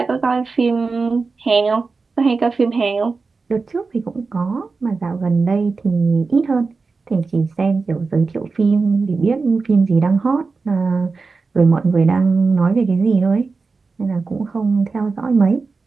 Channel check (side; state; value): left; quieter; 4.3 dB